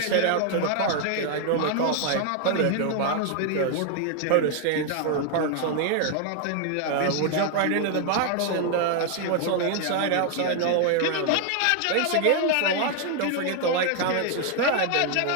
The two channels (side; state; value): both; different; correlation 0.00